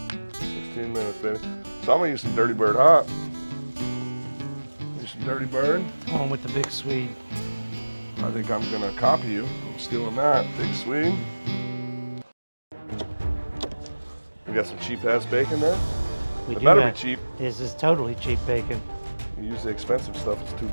16 minutes, baby. So I'm gonna use some Dirty Bird Hot. Use some Dirty Bird. On with the big sweet. I think I'm gonna copy you. I'm stealing that. Big Swede. We got some cheap ass bacon there. It better be cheap. This is totally cheap bacon. You use the expensive stuff, it's too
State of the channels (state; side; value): inverted; both; correlation -1.00